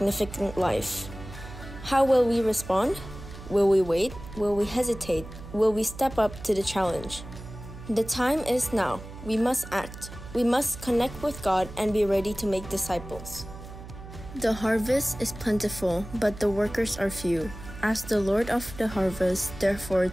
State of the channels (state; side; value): noise; right; hum, 14 dB below the sound